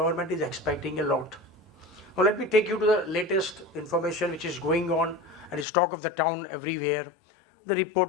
is expecting a lot. Now let me take you to the latest information which is going on and is talk of the town everywhere. The report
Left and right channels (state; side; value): drops out; right; at 5.7 s